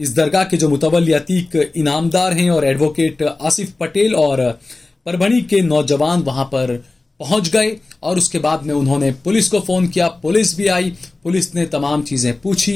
दरगाह के जो मुतवल्ली अतीक इनामदार हैं और एडवोकेट आसिफ पटेल और परभणी के नौजवान वहां पर पहुंच गए और उसके बाद में उन्होंने पुलिस को फोन किया। पुलिस भी आई, पुलिस ने तमाम चीजें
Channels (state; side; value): quieter; right; 3.3 dB